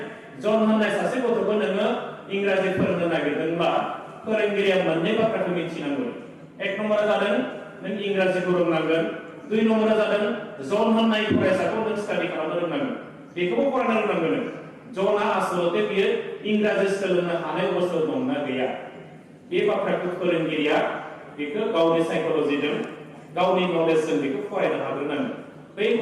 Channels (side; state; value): both; identical; correlation 1.00